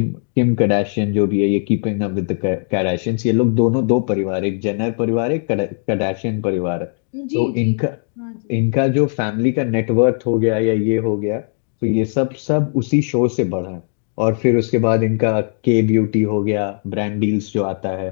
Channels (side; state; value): right; silent; 62 dB below the other